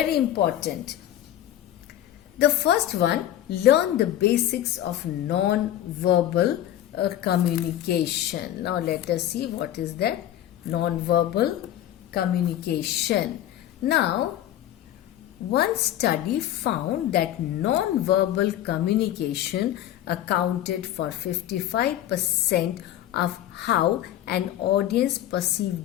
important. The first one, learn the basics of non-verbal communication. Now let us see what is that non-verbal communication. Now, one study found that non-verbal communication accounted for 55% of how an audience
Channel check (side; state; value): right; quieter; 12.3 dB